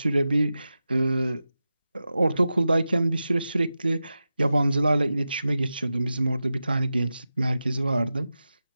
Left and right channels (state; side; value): inverted; both; correlation -0.93